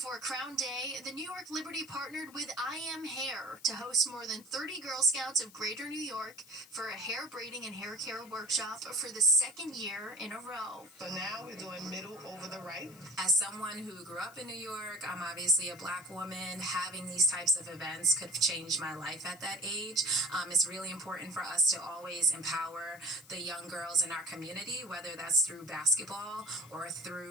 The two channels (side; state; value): left; noise; hiss, 22 dB below the sound